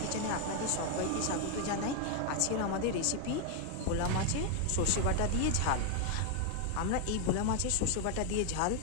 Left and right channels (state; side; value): different; both; correlation 0.00